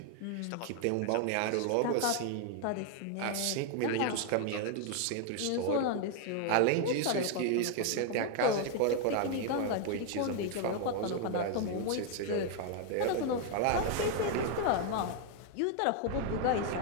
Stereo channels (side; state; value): both; different; correlation 0.00